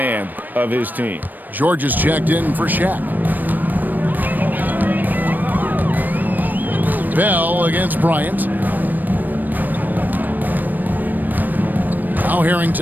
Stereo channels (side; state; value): left; late; 0.088 ms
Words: of his team. George is checked in for Shaq. Bell against Bryant. Now